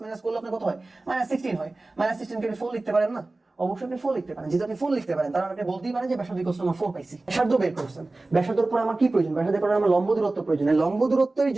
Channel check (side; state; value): left; quieter; 3.1 dB